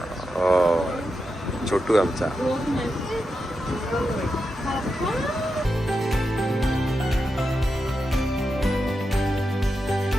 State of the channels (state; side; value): normal; both; correlation 0.88